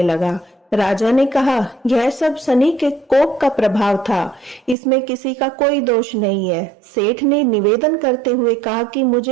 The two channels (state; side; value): drops out; left; at 4.8 s